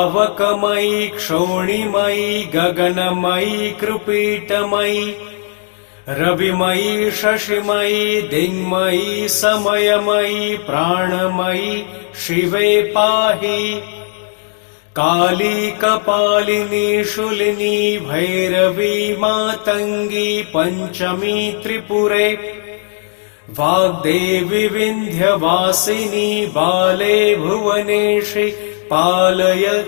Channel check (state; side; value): silent; right; 69 dB below the other